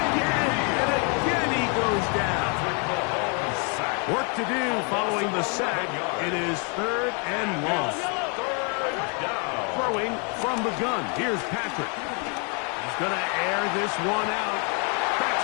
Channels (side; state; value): right; quieter; 36.4 dB